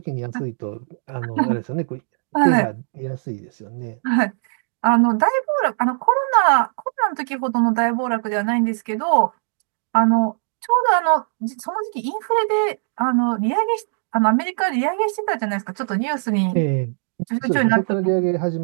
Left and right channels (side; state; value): left; silent; digital silence